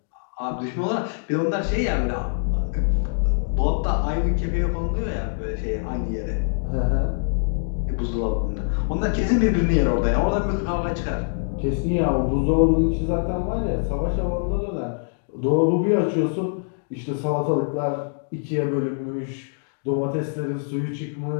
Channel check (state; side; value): silent; right; digital silence